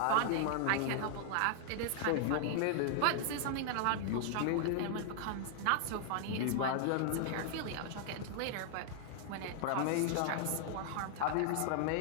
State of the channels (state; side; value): different; both; correlation -0.01